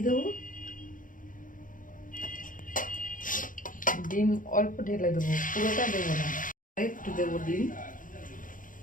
দেবো। ডিম অল্প ঢেলে দেবো, পুরোটা দেবো না, একটু দেবো ডিম।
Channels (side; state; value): right; late; 0.39 ms